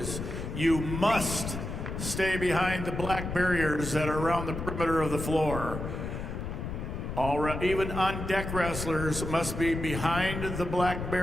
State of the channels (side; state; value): left; noise; rumble, 5 dB below the sound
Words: you must stay behind the black barriers that are around the perimeter of the floor. Even on-deck wrestlers must be behind the black